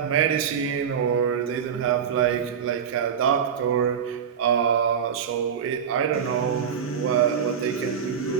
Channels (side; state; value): left; quieter; 7.7 dB